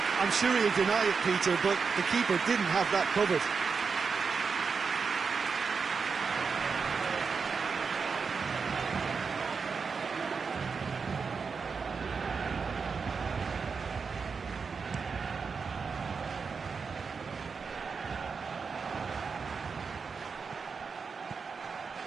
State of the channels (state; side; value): quieter; left; 5.3 dB